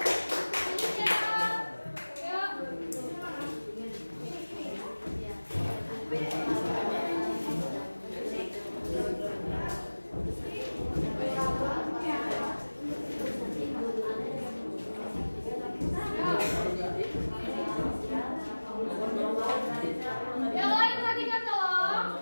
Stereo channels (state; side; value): inverted; both; correlation -1.00